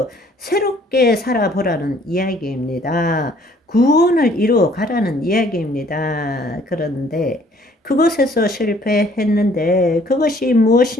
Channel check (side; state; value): both; normal; correlation 0.59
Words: 새롭게 살아보라는 이야기입니다. 구원을 이루어 가라는 이야기입니다. 그런데 그것에서 실패했는데 그것이